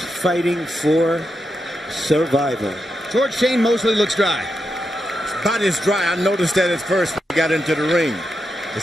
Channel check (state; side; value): normal; both; correlation 0.86